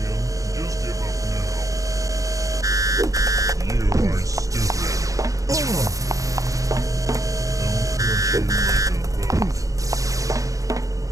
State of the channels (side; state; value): left; late; 0.16 ms